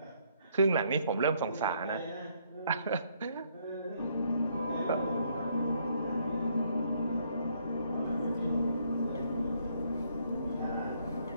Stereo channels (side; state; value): both; inverted; correlation -0.69